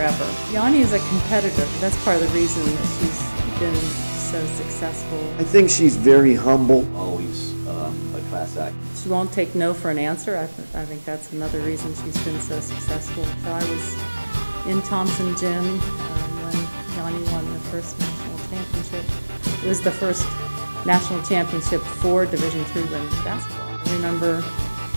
Yonnie is a competitor. That's part of the reason that she's been so successful. I think she's very humble. Always a class act. She won't take no for an answer. I think that's another reason she's been so successful. So I was in Thompson Gym when Yonnie won the first national championship. It was the first national championship for Division III women's basketball. I remember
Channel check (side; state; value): both; inverted; correlation -1.00